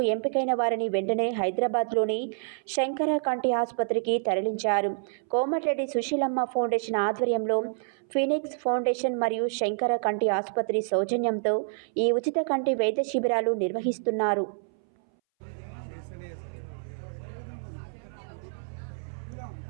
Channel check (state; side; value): silent; left; 59 dB below the other